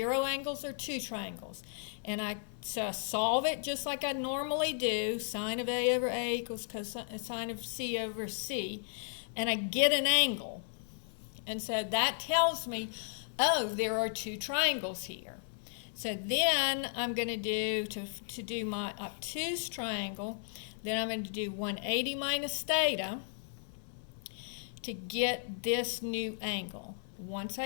angles or 2 triangles. And I solve it just like I normally do, sine of a over a equals cosine of c over c, and I get an angle. And so that tells me, oh, there are 2 triangles here. So then I'm going to do, to do my obtuse triangle, then I'm going to do 180 minus theta to get this new angle. Once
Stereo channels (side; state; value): right; silent; 55 dB below the other